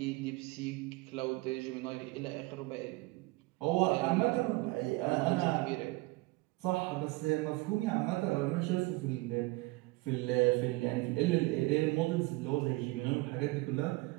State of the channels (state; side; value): quieter; left; 22.5 dB